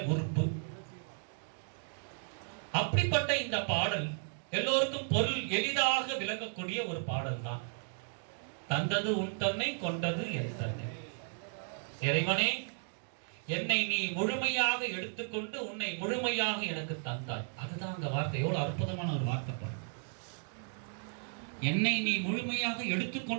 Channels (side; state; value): left; silent; 55 dB below the other